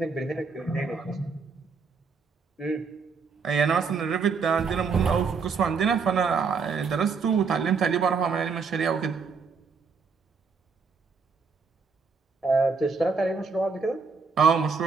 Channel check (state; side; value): quieter; left; 5.2 dB